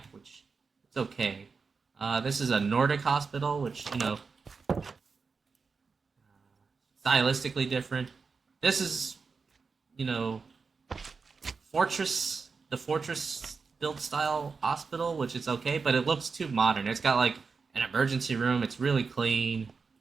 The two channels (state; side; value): quieter; left; 4.9 dB